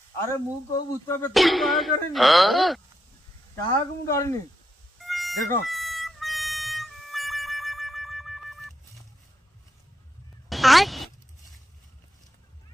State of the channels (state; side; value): normal; both; correlation 0.82